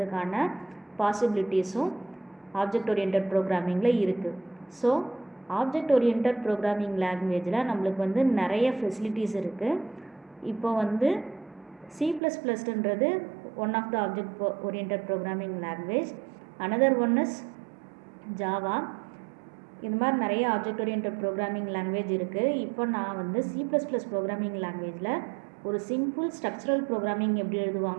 பாசிபிலிட்டிஸும் ஆப்ஜெக்ட் ஓரியன்ட் ப்ரோக்ராமிங்கில் இருக்குது. ஸோ ஆப்ஜெக்ட் ஓரியன்ட் ப்ரோக்ராமிங் லாங்குவேஜில் நம்மளுக்கு வந்து நிறைய ஃபெசிலிட்டிஸ் இருக்குது. இப்போ வந்து C++ன்றது one of the object oriented programming language. Another one is Java. இது மாதிரி நிறைய ஆப்ஜெக்ட் ஓரியன்ட் ப்ரோக்ராமிங் லாங்குவேஜ் இருக்குது. இப்போ நான் வந்து C++ ப்ரோக்ராமிங் லாங்குவேஜில் ஒரு சிம்பிள் ஸ்ட்ரக்சரல் ப்ரோக்ராமிங் எப்படி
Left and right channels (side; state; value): left; drops out; at 12.2 s